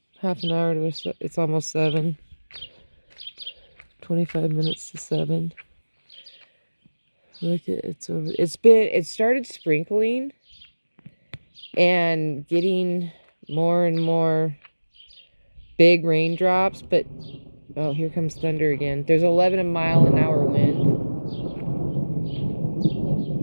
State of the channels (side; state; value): both; inverted; correlation -1.00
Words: half an hour to, it's almost 7. 25 minutes to 7. Look at it's over. It started sprinkling and getting more and more big raindrops, but oh, here comes thunder again. There's 11 mile an hour wind.